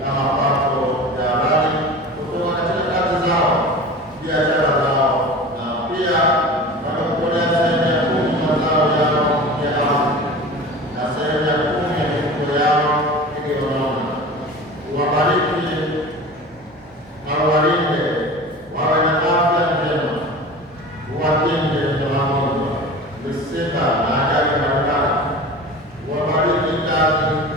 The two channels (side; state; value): both; normal; correlation 0.36